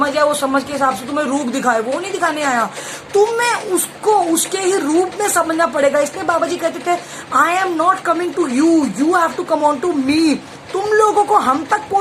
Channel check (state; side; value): identical; both; correlation 1.00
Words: है वो समझ के हिसाब से तुम्हें रूप दिखाए, वो नहीं दिखाने आया। तुम्हें उसको उसके ही रूप में समझना पड़ेगा। इसलिए बाबा जी कहते थे I am not coming to you, you have to come on to me. तुम लोगों को हम तक